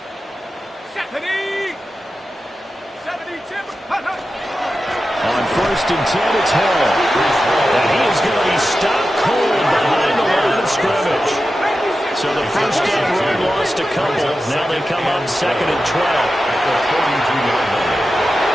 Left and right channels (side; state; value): both; normal; correlation 0.92